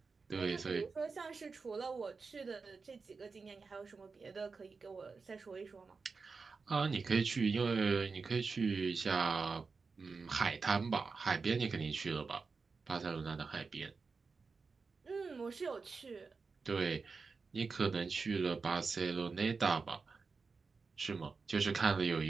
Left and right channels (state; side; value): quieter; left; 4.6 dB